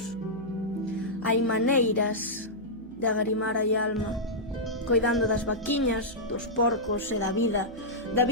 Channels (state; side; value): noise; right; hum, 21 dB below the sound